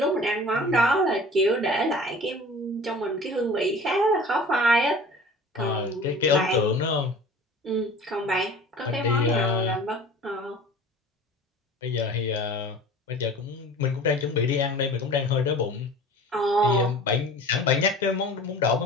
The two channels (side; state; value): both; normal; correlation 0.42